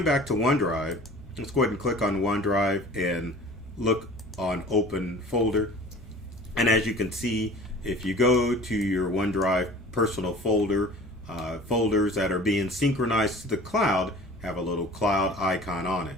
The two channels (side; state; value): both; normal; correlation 0.44